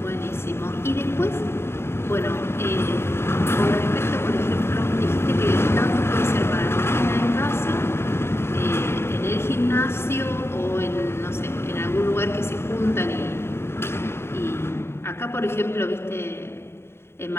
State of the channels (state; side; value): late; right; 0.12 ms